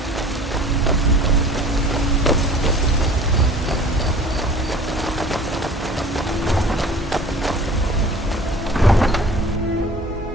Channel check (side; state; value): both; normal; correlation 0.45